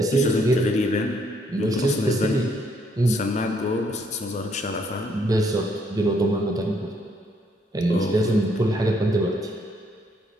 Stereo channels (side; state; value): both; normal; correlation 0.70